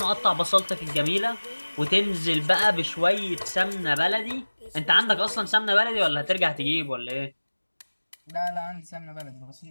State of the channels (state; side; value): inverted; both; correlation -1.00